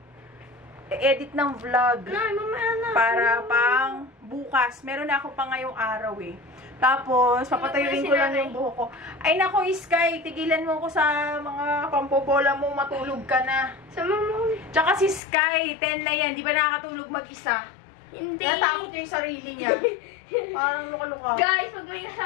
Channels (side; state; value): right; drops out; at 15.2 s